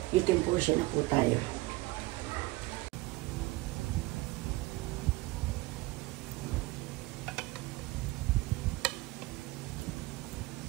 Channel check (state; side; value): quieter; left; 20.4 dB